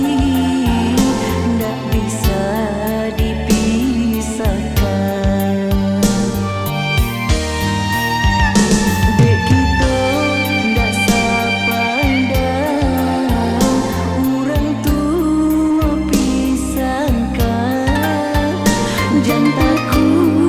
ndak bisa dipisahkan. Dek kita ndak sepandang, orang tua pisahkan. Jangan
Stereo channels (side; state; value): both; identical; correlation 1.00